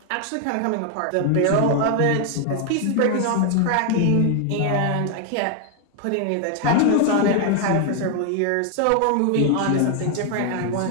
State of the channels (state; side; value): different; both; correlation 0.00